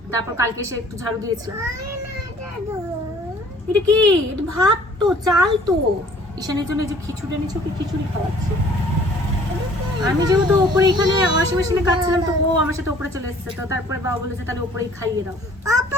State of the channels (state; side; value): normal; both; correlation 0.55